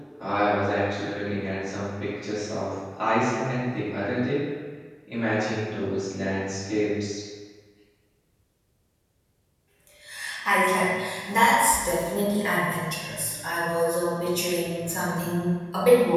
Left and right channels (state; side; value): identical; both; correlation 1.00